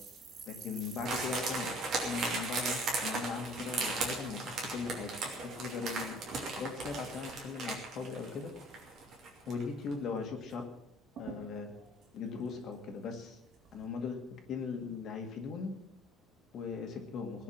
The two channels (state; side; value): normal; both; correlation 0.53